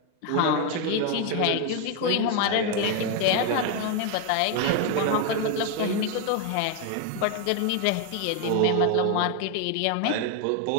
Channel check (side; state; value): both; different; correlation 0.01